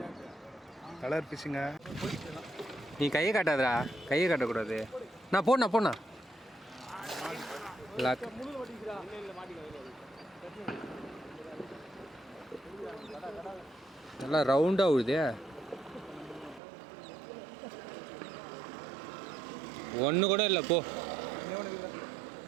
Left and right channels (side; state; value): left; drops out; at 16.6 s